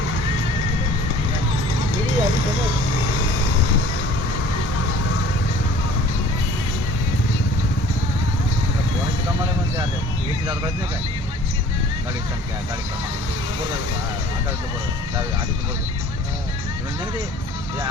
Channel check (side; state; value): both; normal; correlation 0.50